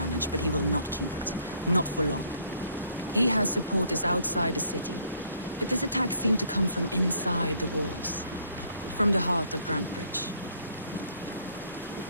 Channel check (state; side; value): inverted; both; correlation -0.63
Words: but he will not keep it. Not for long. He has supporters outside the city, but this attack seemed to come from inside the walls. From the heart of Grandbridge.